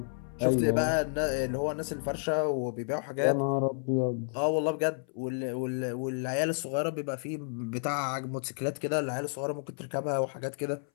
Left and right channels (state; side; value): silent; right; 57 dB below the other